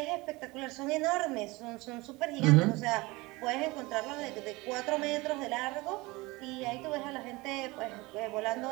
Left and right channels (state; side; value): quieter; left; 22.6 dB